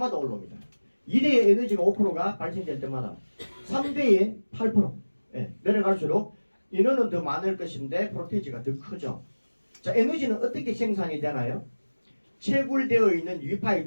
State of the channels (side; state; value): both; inverted; correlation -1.00